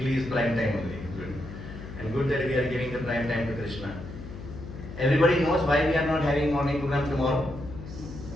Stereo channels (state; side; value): noise; left; hum, 12 dB below the sound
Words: is prime time only. Good. And good that we are giving the prime time to Krishna. Everybody knows why we are not having morning program tomorrow.